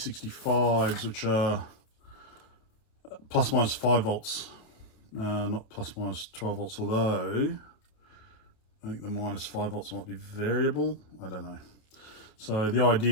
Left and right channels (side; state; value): right; late; 28 ms